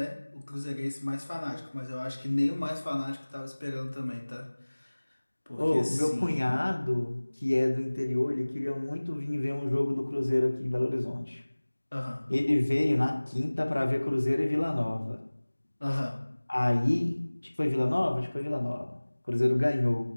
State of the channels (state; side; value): inverted; both; correlation -1.00